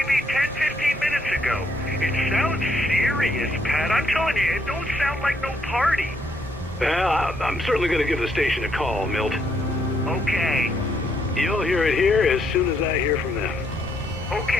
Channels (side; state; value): both; normal; correlation 0.72